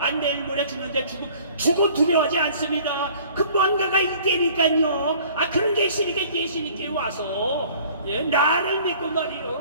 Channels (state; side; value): inverted; both; correlation -0.51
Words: 내일 모레 죽는데 죽어 두려워하지 않습니다. 그 뭔가가 있다니까요. 그런 게 있으니까 예수님께 와서 나를 믿고